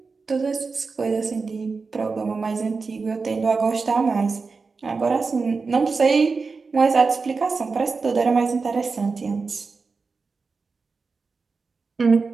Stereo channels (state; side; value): quieter; left; 4.5 dB